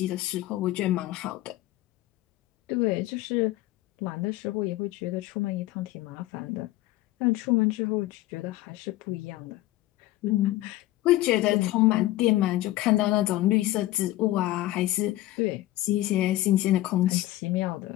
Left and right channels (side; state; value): right; quieter; 16.4 dB